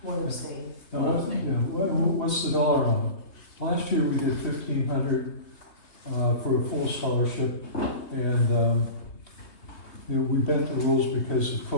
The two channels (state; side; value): late; right; 3.1 ms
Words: One abstain. Now, what's the dollar amount? Last year, we did 1,500 for a full scholarship, and we bent the rules because of